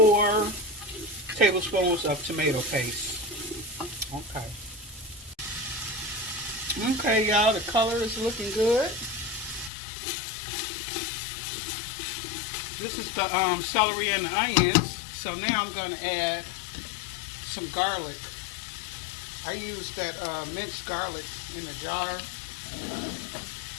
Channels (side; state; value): right; drops out; at 9.7 s